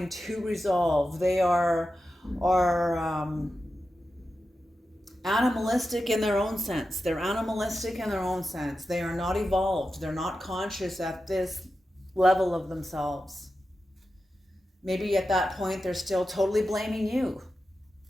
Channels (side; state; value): both; normal; correlation 0.91